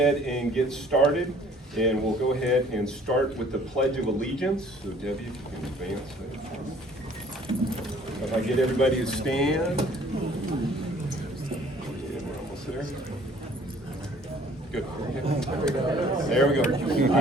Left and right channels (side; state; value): both; normal; correlation 0.56